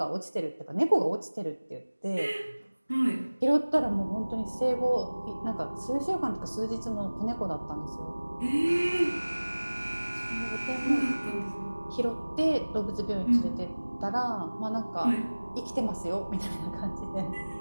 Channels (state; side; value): inverted; both; correlation -1.00